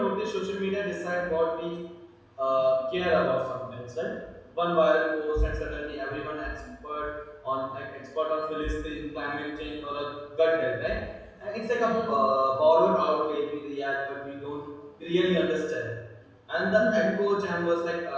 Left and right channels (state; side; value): identical; both; correlation 1.00